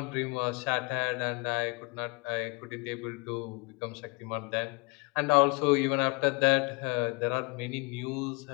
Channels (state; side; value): quieter; right; 29.5 dB